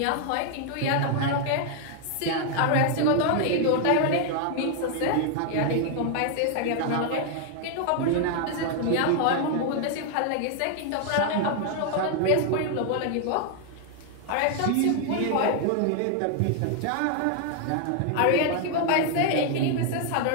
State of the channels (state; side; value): different; both; correlation 0.00